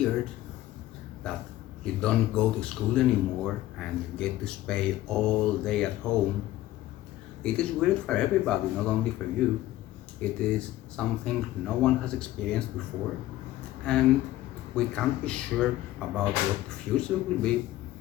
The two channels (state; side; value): quieter; right; 15.3 dB